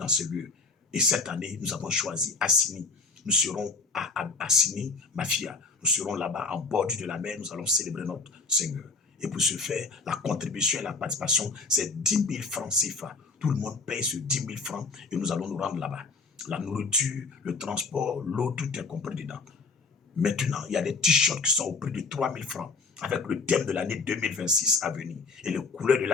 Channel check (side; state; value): right; quieter; 4.1 dB